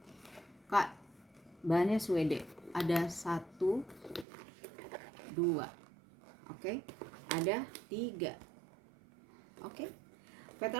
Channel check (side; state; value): left; drops out; at 4.2 s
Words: Kak, bahannya Swede. Ada 1 2, oke, ada 3. Oke,